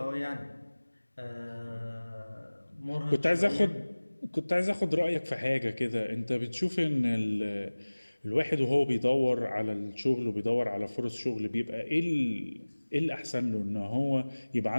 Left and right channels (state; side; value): inverted; both; correlation -1.00